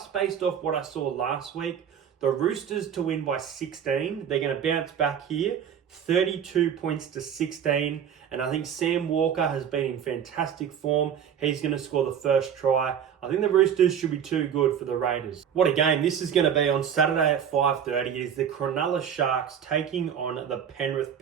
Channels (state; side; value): quieter; left; 8.4 dB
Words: based off what I saw last week. The Roosters to win by 16. They're going to bounce back here. 32 points to 16. And I think Sam Walker has been in fantastic form. He's going to score the first try. I think the Roosters should be too good for the Raiders. What a game this is going to be on Saturday at 5:30. It is the Cronulla Sharks taking on the Penrith